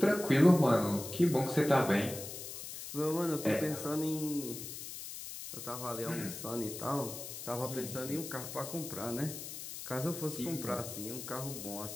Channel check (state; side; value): noise; left; hiss, 9 dB below the sound